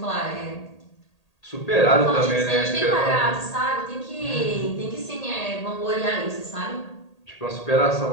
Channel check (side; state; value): right; late; 1.8 ms